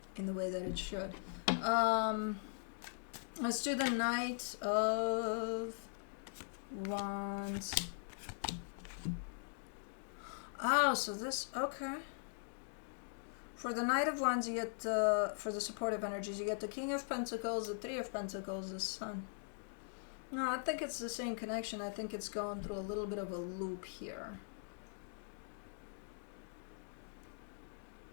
in the way that it should. Let's do the Knight of Wands. Oh, so this, okay. For the Knight of Wands, you get, for the supportive energies, you get the King of Pentacles, the Three of Pentacles, the Sun. No, I think it's the same connection. I think it's going through a little bit of a loop here.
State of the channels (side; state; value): right; silent; digital silence